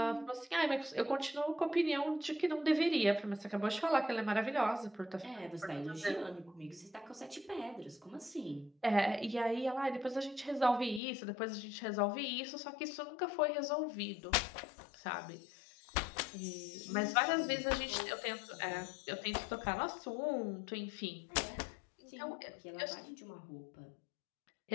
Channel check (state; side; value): drops out; right; at 11.0 s